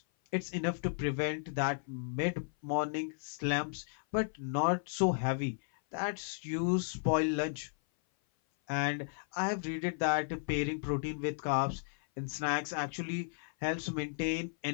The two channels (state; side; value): silent; right; 55 dB below the other